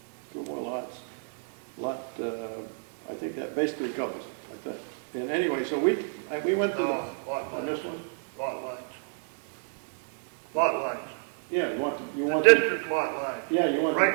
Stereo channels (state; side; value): silent; left; digital silence